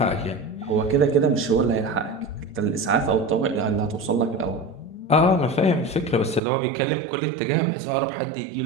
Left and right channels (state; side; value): drops out; left; at 6.4 s